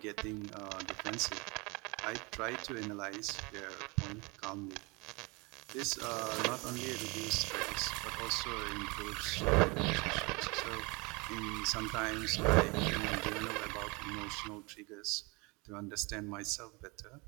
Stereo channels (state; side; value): quieter; left; 27.4 dB